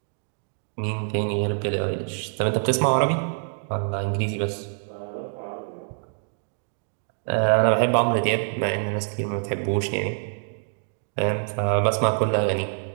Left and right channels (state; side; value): silent; left; 59 dB below the other